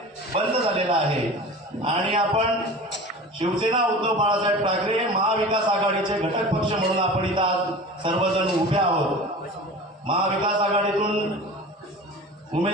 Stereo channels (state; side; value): normal; both; correlation 0.36